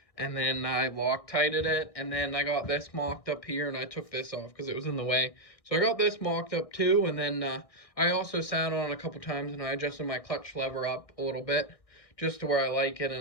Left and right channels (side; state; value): right; late; 1.6 ms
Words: And then I Loctited it, and then I got this mocked up here, and I took this off because it was in the way. So I got this mocked up too, and then I also sat on it a couple times, and I adjusted my clutch lever up a little bit, just to where I like it,